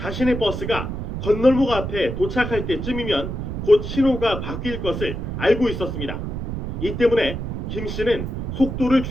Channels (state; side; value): noise; right; rumble, 5 dB below the sound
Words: 버스가 건널목 앞에 도착할 때쯤이면 곧 신호가 바뀔 것을 알고 있었습니다. 이 때문에 김 씨는 속도를